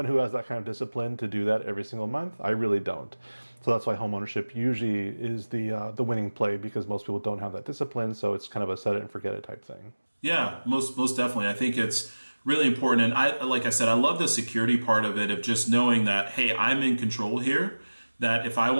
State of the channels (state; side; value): inverted; both; correlation -1.00